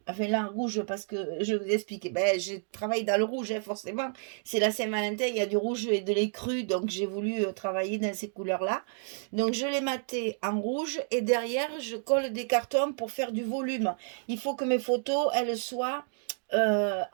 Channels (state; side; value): silent; left; 58 dB below the other